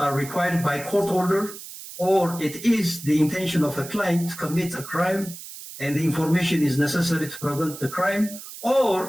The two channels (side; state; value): right; noise; hiss, 13 dB below the sound